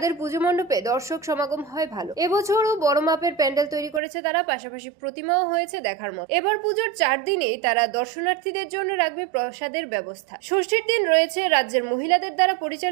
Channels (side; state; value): left; drops out; at 4.0 s